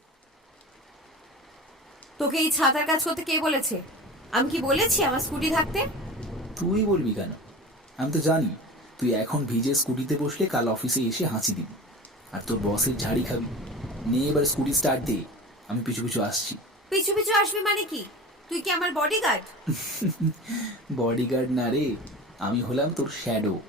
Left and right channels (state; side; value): normal; both; correlation 0.34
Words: তোকে এই ছাতার কাজ করতে কে বলেছে? আমি কি বলেছি আমার স্কুটি থাকতে? তুই বলবি কেন? আমি তো জানি তুই এখন ভিজে স্কুটিতে বসলে কাল অফিসে এসে হাঁচি দিবি আর তোর বসের ঝাড়ি খাবি। নে এবার স্কুটি স্টার্ট দে, আমি পিছু পিছু আসছি। পিছু পিছু আসবি মানে কি? তুই কি আমার বডিগার্ড? বডিগার্ড না রে, আমি হলাম তোর শ্যাডো।